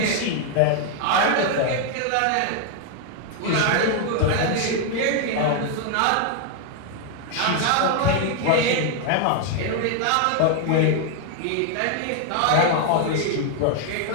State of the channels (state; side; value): different; both; correlation 0.00